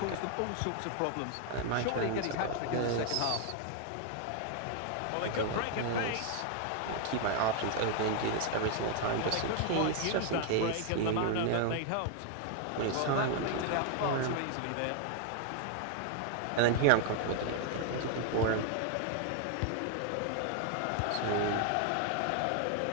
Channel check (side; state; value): both; different; correlation 0.00